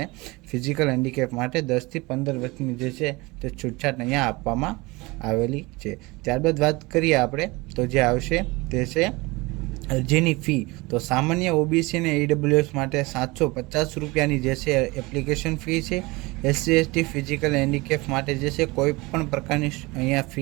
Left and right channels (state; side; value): quieter; left; 23.5 dB